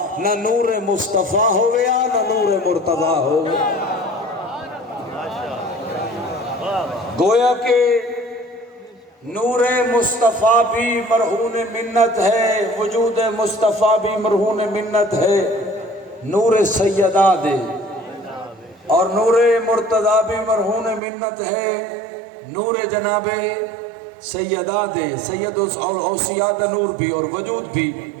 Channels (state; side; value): drops out; left; at 21.0 s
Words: نہ نور مصطفیٰ ہویا نہ نور مرتضی ہویا. گویا کہ نور مصطفیٰ بھی مرہون منت ہے، وجود مصطفیٰ بھی مرہون منت ہے. نور سیدہ دے اور نور مرتضی بھی مرہون منت ہے. نور جناب سیدہ دے، سید اوصیاء دا نور بھی اور وجود بھی.